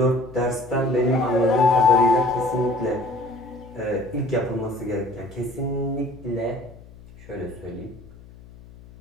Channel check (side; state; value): left; noise; hum, 20 dB below the sound